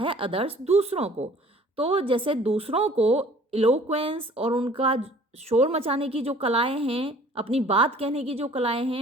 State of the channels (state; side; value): normal; both; correlation 0.52